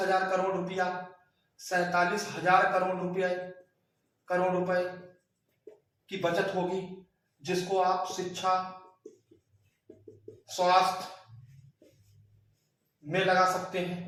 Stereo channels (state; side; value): identical; both; correlation 1.00